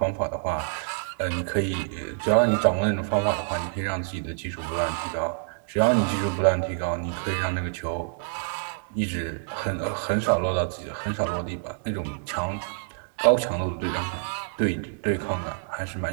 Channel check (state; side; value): silent; left; digital silence